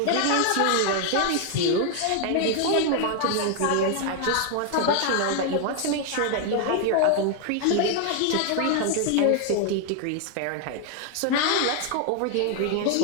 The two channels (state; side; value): different; both; correlation 0.00